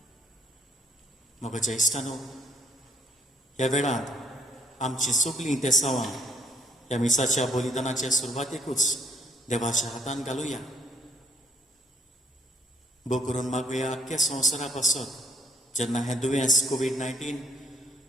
मग ज्येष्ठानो, ह्या वेळार आमची सगळीं तेसावां ह्या मिसाच्या बलिदानाच्या सुरवातेकूच देवाच्या हातान घालुया. भोव करून मागुया आख्ख्या संवसारा पासत जेन्ना हें दुयेंस कोवीड-19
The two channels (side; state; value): both; normal; correlation 0.66